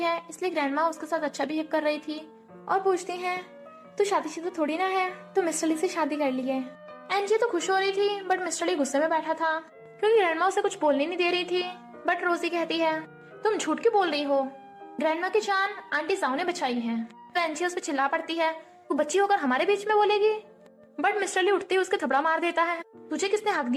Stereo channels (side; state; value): both; identical; correlation 1.00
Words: इसलिए ग्रैंडमा उसके साथ अच्छा बिहेव कर रही थी और पूछती हैं तू शादीशुदा थोड़ी ना है, तो मिस्टर ली से शादी कर ली है। एंजिया तो खुश हो रही थी बट मिस्टर ली गुस्से में बैठा था क्योंकि ग्रैंडमा उसे कुछ बोलने नहीं दे रही थी। बट रोजी कहती है तुम झूठ क्यों बोल रही हो, ग्रैंडमा की जान आंटी साउ ने बचाई है। तो एंजिया उस पर चिल्ला पड़ती है तू बच्ची होकर हमारे बीच में बोलेगी। बट मिस्टर ली उठते ही उसके थपड़ा मार देता है, तुझे किसने हक